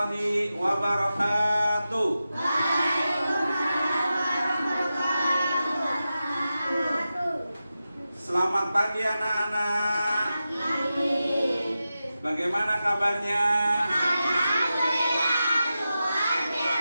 wabarakatuh. Selamat pagi anak-anak. Bagaimana kabarnya?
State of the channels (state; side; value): inverted; both; correlation -0.92